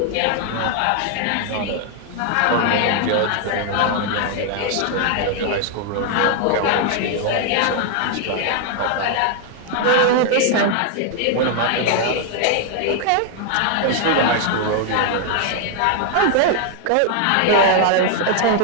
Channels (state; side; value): different; both; correlation 0.00